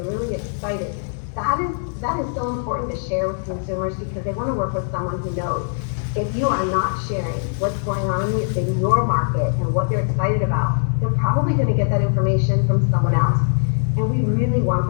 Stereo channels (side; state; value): right; silent; 59 dB below the other